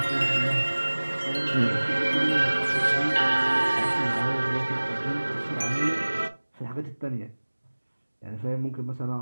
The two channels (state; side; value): inverted; both; correlation -1.00